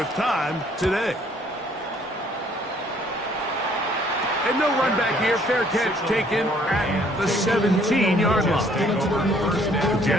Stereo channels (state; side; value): normal; both; correlation 0.62